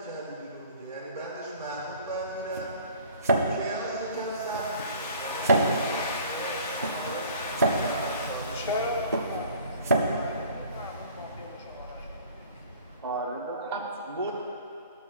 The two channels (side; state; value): both; inverted; correlation -0.49